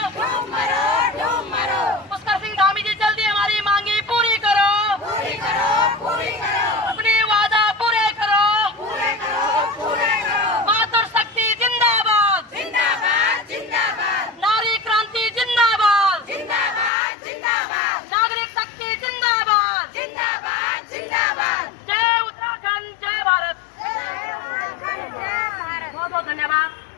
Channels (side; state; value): right; drops out; at 16.9 s